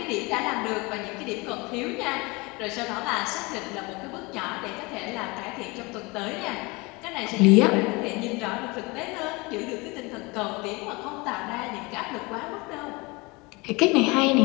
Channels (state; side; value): quieter; right; 25.6 dB